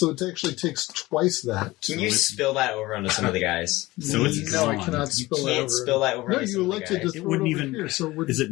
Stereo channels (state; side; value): quieter; right; 19.4 dB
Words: it actually takes twice that. Can you spill that over onto some of the guys? So it's no, I gone. cannot You spill that can't over. spill that over No, onto you some of the elected to guys. throw It wouldn't it over even- here. So we're, Is it